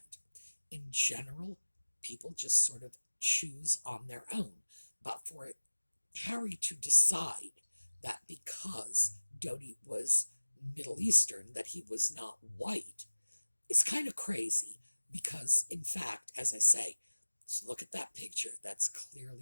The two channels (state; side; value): inverted; both; correlation -1.00